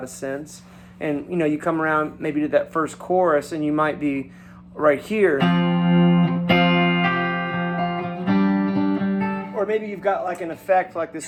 of sense. And, you come around maybe to that first chorus, and you might be right here. Or maybe you've got like an effect like this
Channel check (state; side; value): identical; both; correlation 1.00